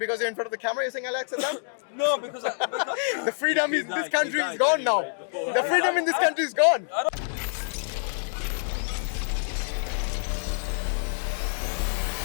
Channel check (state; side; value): silent; right; digital silence